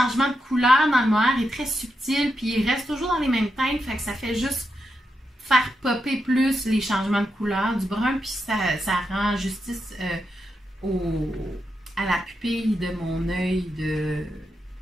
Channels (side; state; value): both; normal; correlation 0.85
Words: de couleur dans le mohair est très subtil, puis il reste toujours dans les mêmes teintes, fait que ça fait juste faire popper plus les changements de couleur du brun, puis ça rend justice à la pupille de mon œil du